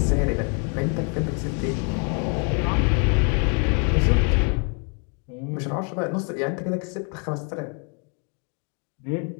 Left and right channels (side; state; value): right; quieter; 39.1 dB